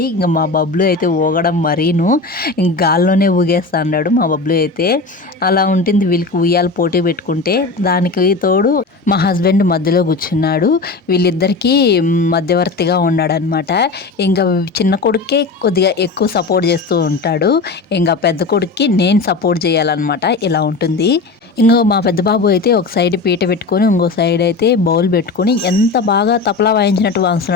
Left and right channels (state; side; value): quieter; right; 3.9 dB